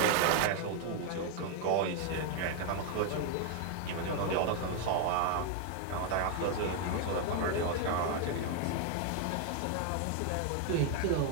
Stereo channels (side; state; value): both; different; correlation 0.01